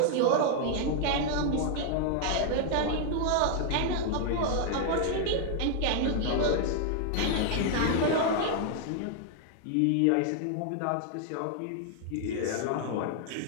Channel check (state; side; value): different; both; correlation 0.00